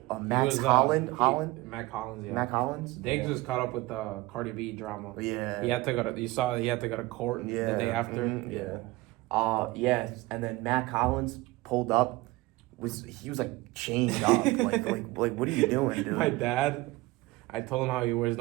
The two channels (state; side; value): quieter; left; 20.3 dB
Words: Holland? Mac Hollins, yeah. Mac Hollins? Diggs was caught up with the Cardi B drama. Yeah. He had to go to court the day after. Yeah. Yes, and then Matt Collins pulled up. He was like chained up. like what are you doing, dude? My dad, I told him how he wears